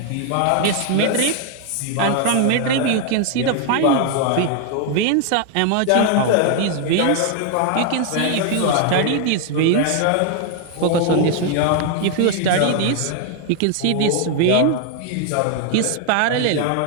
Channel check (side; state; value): both; different; correlation 0.00